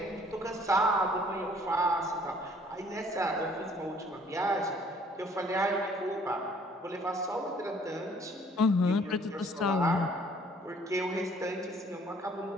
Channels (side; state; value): both; normal; correlation 0.59